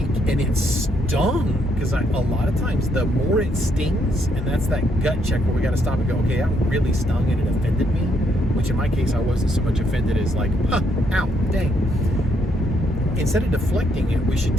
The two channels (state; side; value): normal; both; correlation 0.73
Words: and it stung, because a lot of times the more it stings, and that's that gut check where we got to stop and go, okay, that really stung and it offended me, which in my case I wasn't so much offended as like, ow, dang. Instead of deflecting it, we should